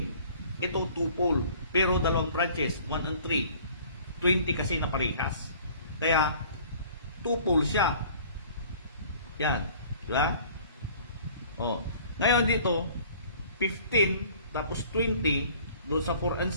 Ito 2 pole, pero dalawang branches, 1 and 3. 20 kasi na parehas. Kaya, 2 pole siya. Yan. Diba? O. Ngayon dito, 15, tapos 20, doon sa 4 and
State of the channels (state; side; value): inverted; both; correlation -0.51